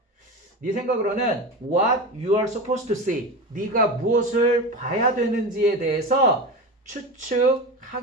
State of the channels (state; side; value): normal; both; correlation 0.25